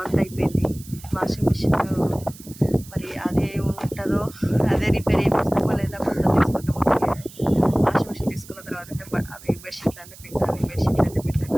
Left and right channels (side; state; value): right; noise; hiss, 19 dB below the sound